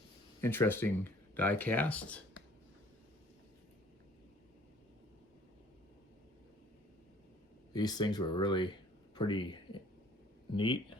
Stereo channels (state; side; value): normal; both; correlation 0.54